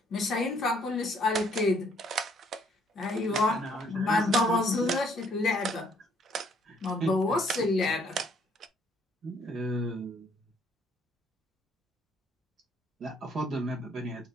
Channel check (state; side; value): normal; both; correlation 0.65